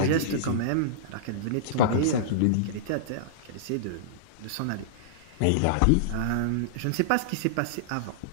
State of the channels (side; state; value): both; different; correlation -0.03